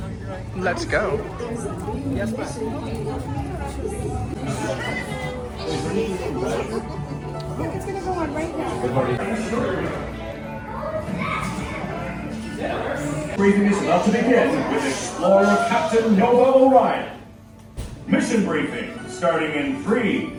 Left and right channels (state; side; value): identical; both; correlation 1.00